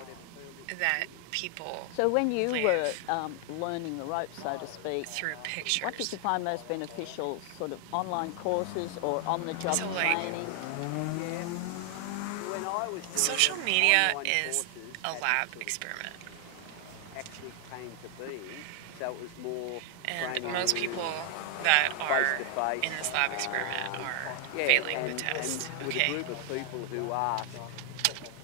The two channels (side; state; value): both; different; correlation 0.00